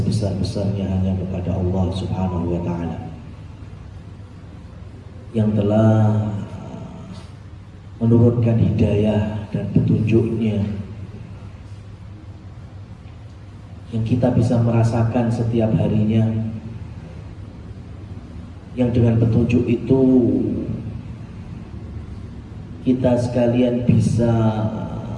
hanya kepada Allah Subhanahu wa Ta'ala yang telah menurunkan hidayah dan petunjuknya, yang kita bisa merasakan setiap harinya, yang dengan petunjuk itu kita sekalian bisa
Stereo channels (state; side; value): identical; both; correlation 1.00